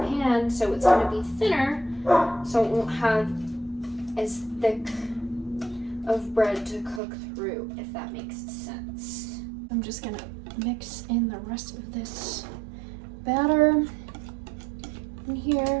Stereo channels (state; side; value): drops out; left; at 7.0 s